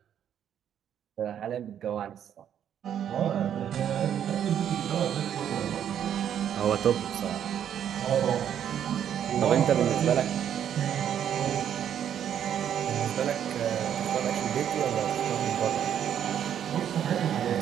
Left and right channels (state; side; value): quieter; left; 9.5 dB